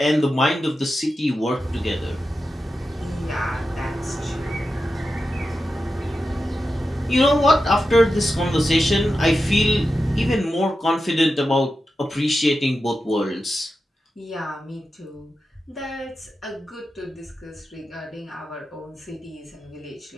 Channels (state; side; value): normal; both; correlation 0.91